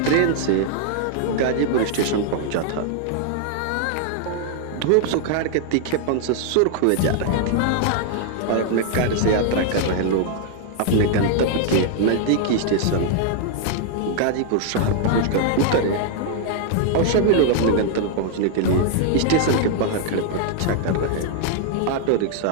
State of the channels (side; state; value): both; different; correlation 0.00